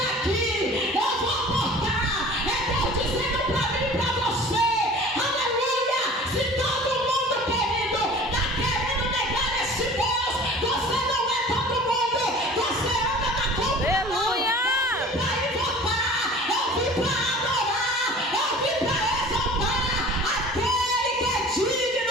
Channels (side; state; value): both; normal; correlation 0.44